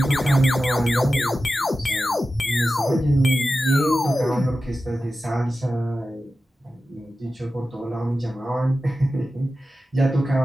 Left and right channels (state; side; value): normal; both; correlation 0.93